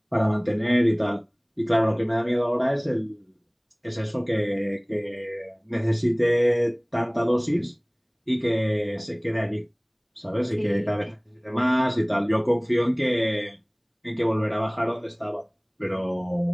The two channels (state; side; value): identical; both; correlation 1.00